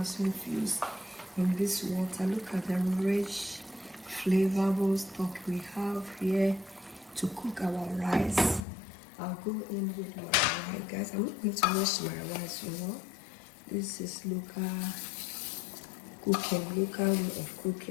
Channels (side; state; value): right; drops out; at 8.7 s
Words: infused in this water. Look at the rich flavorful stock we have here to cook our rice. I'll go in with my rice, guys. I'm not going to wash my rice, you know. This is local way of